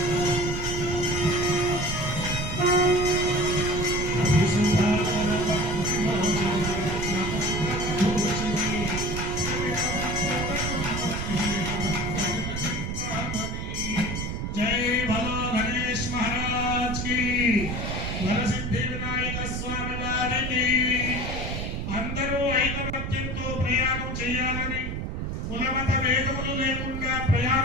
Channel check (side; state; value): right; noise; rumble, 4 dB below the sound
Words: వరసిద్ధి వినాయక స్వామి వారికి అందరూ ఐకమత్యంతో ప్రయాణం చేయాలని, కులమత భేదములు లేకుండా